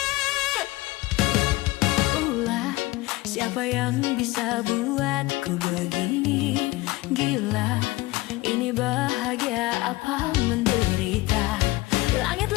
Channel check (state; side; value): quieter; right; 20.5 dB